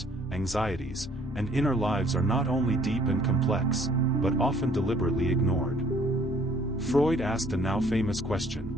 anxieties, and inner lives are not only deep and complex, but often deliberately ignored. Freud asked a now famous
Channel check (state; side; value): normal; both; correlation 0.60